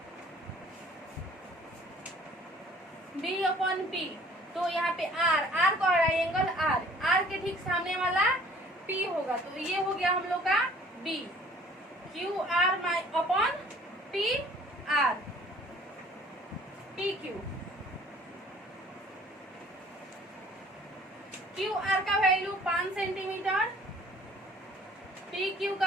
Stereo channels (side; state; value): both; normal; correlation 0.53